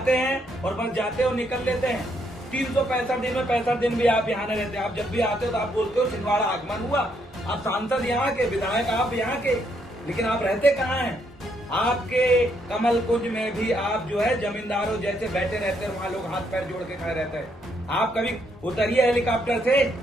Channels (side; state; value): both; normal; correlation 0.74